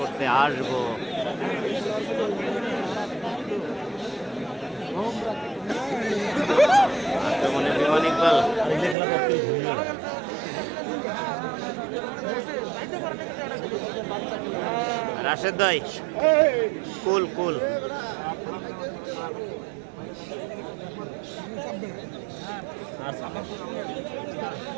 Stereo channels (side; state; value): left; drops out; at 9.0 s